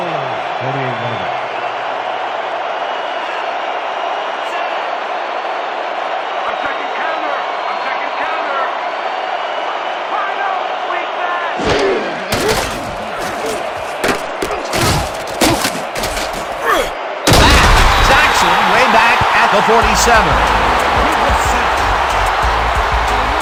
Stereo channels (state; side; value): identical; both; correlation 1.00